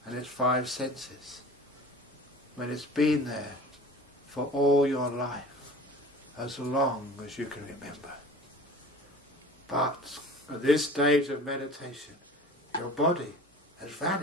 and its 5 senses when it's been there for all your life, as long as you can remember? But at this stage of meditation, your body has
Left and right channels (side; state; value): both; normal; correlation 0.42